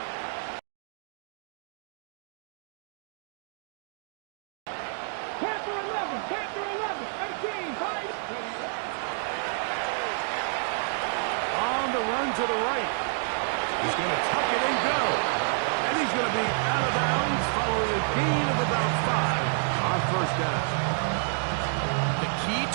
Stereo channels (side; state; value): left; silent; digital silence